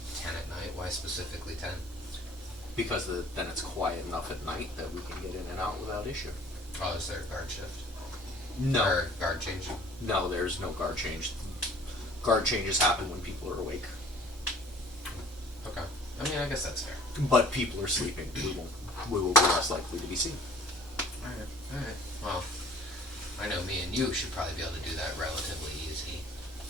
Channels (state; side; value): normal; both; correlation 0.53